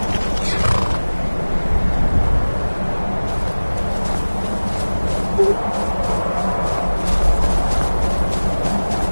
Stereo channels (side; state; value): both; inverted; correlation -1.00